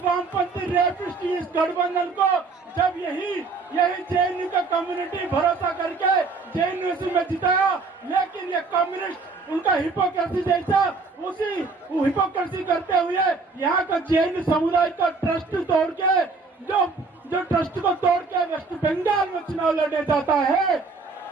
वामपंथी रेपिस्ट इस गठबंधन को जब यही JNU का कम्युनिटी भरोसा करके JNU में जिताया, लेकिन ये कम्युनिस्ट उनका हिपोक्रेसी जैसा उसी हिपोक्रेसी करते हुए यहाँ का JNU समुदाय का ट्रस्ट तोड़ के जो ट्रस्ट को तोड़ के वेस्ट बंगाल में चुनाव लड़ने जाता है।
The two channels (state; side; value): quieter; left; 4.1 dB